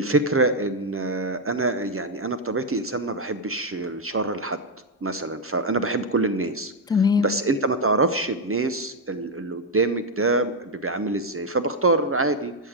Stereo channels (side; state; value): both; normal; correlation 0.01